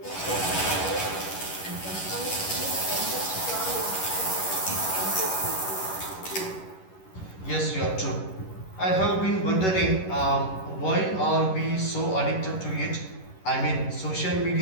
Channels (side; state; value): right; late; 11 ms